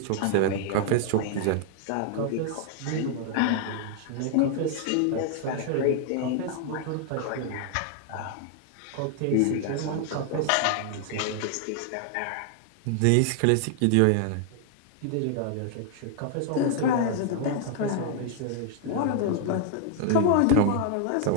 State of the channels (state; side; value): different; both; correlation 0.00